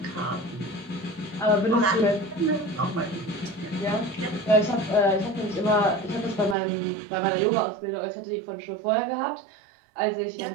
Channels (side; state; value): left; drops out; at 6.6 s